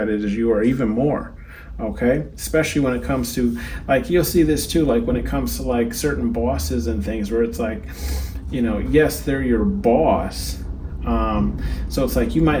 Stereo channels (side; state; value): both; identical; correlation 1.00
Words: as you, or even more. Okay, especially when it comes to, like, you'll see this too, like when it comes to like certain bosses and things, where it's like, yes, they're your boss. So it's like you